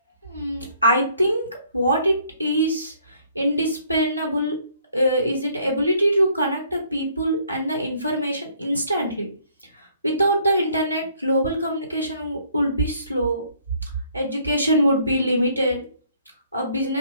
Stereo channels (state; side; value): inverted; both; correlation -0.63